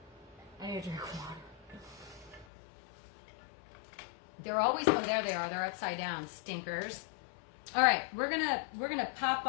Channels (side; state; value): right; drops out; at 2.5 s